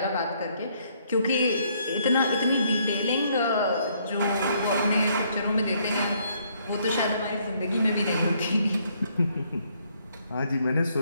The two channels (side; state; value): both; inverted; correlation -0.68